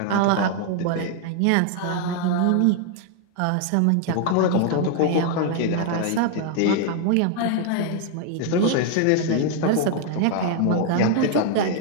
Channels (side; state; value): both; different; correlation 0.00